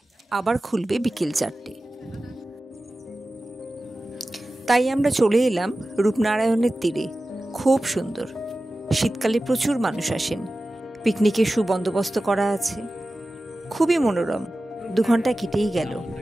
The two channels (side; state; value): both; normal; correlation 0.95